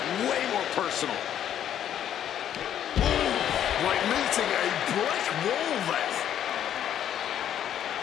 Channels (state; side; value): quieter; right; 10.3 dB